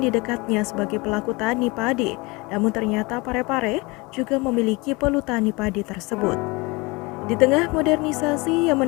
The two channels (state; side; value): quieter; right; 25.5 dB